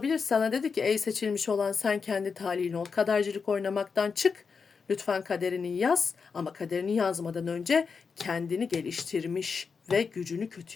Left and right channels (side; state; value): right; quieter; 5.4 dB